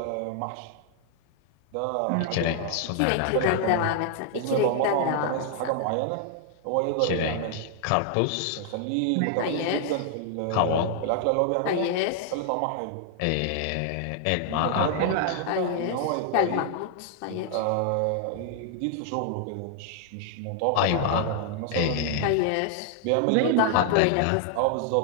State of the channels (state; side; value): different; both; correlation 0.00